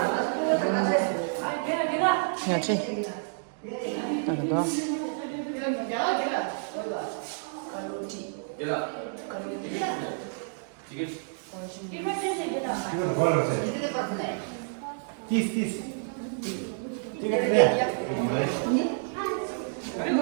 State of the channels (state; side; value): silent; left; digital silence